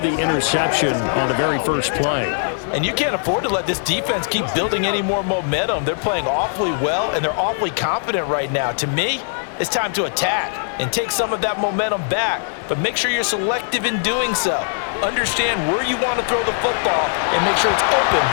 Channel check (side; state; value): right; silent; 57 dB below the other